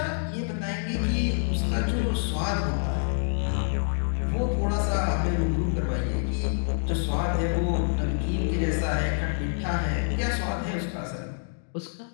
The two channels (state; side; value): silent; right; digital silence